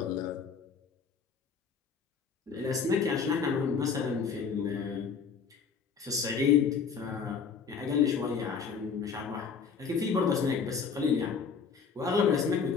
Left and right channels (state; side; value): quieter; right; 6.0 dB